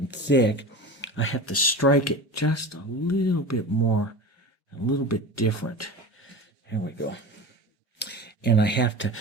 thick, I have to strike it just a little bit more, a little bit different. Here we go. And I have to,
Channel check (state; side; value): normal; both; correlation 0.31